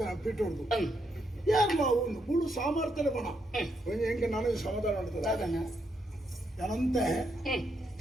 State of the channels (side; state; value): both; normal; correlation 0.78